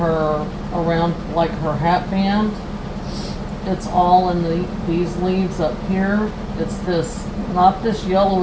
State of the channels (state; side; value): identical; both; correlation 1.00